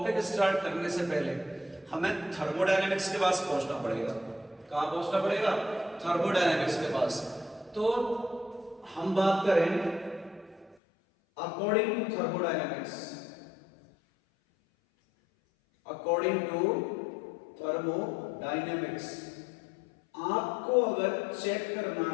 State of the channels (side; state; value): right; drops out; at 10.8 s